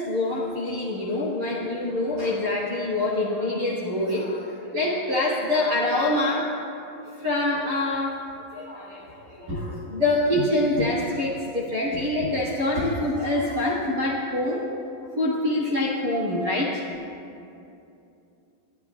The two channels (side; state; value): left; late; 12 ms